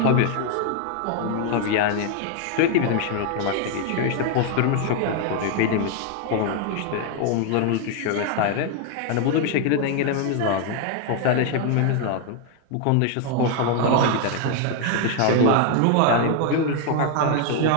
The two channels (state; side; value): different; both; correlation 0.00